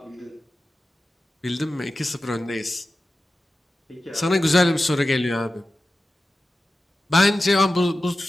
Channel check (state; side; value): normal; both; correlation 0.94